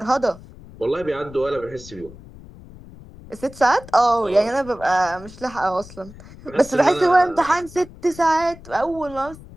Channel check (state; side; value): noise; left; rumble, 19 dB below the sound